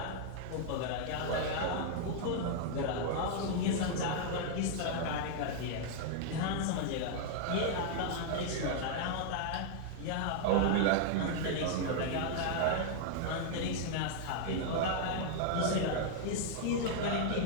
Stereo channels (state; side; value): different; both; correlation -0.01